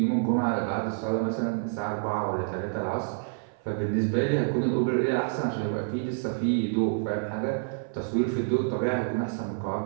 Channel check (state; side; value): silent; left; 55 dB below the other